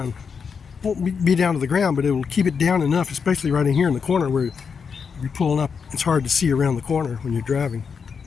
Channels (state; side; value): quieter; right; 6.0 dB